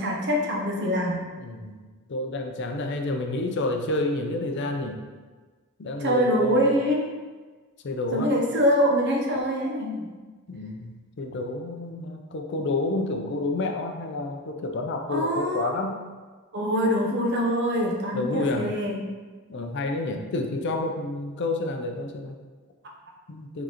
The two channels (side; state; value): both; normal; correlation 0.19